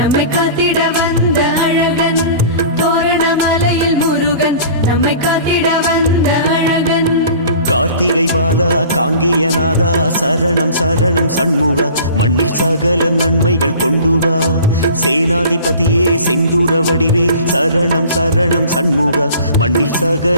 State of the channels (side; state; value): both; inverted; correlation -0.44